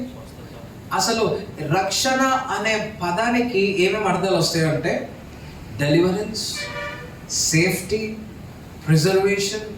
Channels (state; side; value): identical; both; correlation 1.00